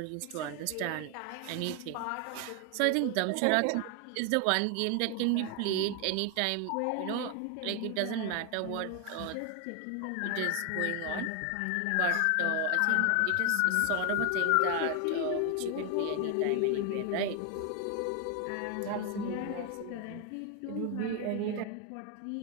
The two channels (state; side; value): different; both; correlation 0.01